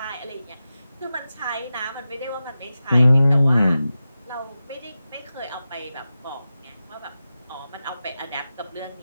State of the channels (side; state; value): both; inverted; correlation -0.93